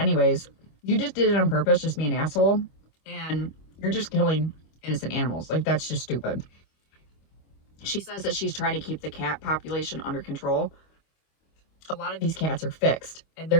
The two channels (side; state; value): right; late; 25 ms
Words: you just did it on purpose, just be an asshole, and you're just killing innocent animals. Like, that's just stupid. She says that she's trying to keep the cat population under control. A lot of these cats are fixed, and they're